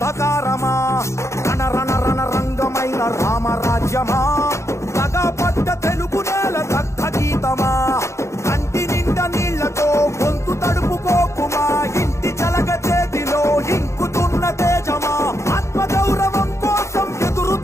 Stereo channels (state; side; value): late; right; 0.14 ms